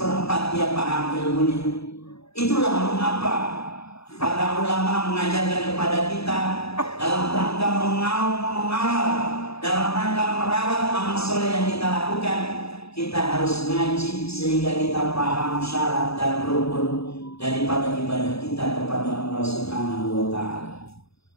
dia paham ilmunya. Itulah mengapa para ulama mengajarkan kepada kita dalam rangka mengawal, dalam rangka merawat amal soleh yang kita lakukan, kita harus ngaji sehingga kita paham syarat dan rukun daripada ibadah kita kepada Allah Subhanahu wa Ta'ala.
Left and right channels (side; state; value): right; late; 0.78 ms